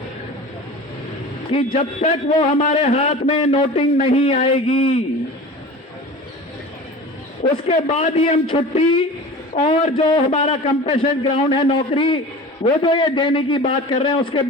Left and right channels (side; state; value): both; normal; correlation 0.37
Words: कि जब तक वो हमारे हाथ में नोटिंग नहीं आएगी, उसके बाद ही हम छुट्टी और जो हमारा कंपेंसेशन ग्राउंड है नौकरी, वो जो ये देने की बात कर रहे हैं, उसके